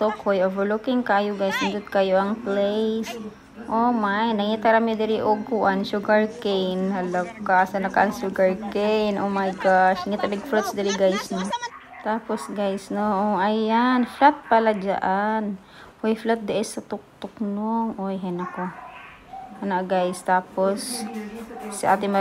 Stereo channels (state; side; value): identical; both; correlation 1.00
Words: Hoy, overlooking kayo guys. Nandito kayo ang place. Oh my, nangita rami diri og kuan sugar cane. Halaka, sa nakaan sugar cane. Oh my gosh, ngita big fruits diri guys no. Tapos guys no, oh, ayan, flat pala diyan. Hoy, flat di sa tuktok no. Oy, henako. Ana guys, tapos si Ate